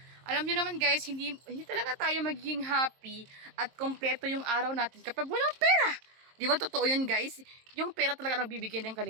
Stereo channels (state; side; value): late; left; 23 ms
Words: Alam niyo naman guys, hindi talaga tayo magiging happy at kompleto yung araw natin kapag walang pera. Di ba totoo yun guys? Yung pera talaga nagbibigay ng